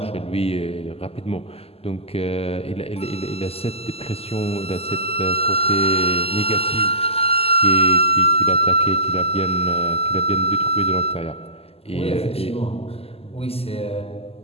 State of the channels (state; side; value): late; right; 0.29 ms